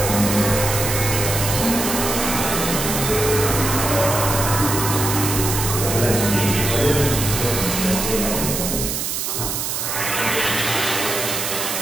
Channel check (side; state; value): right; noise; hiss, 2 dB below the sound